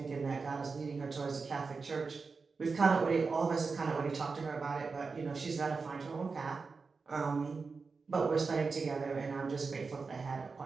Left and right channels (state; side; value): quieter; left; 4.6 dB